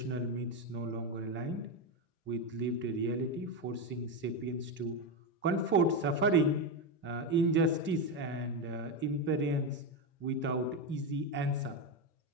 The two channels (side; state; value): both; normal; correlation 0.11